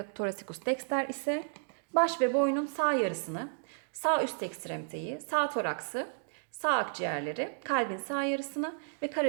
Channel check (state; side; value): silent; left; digital silence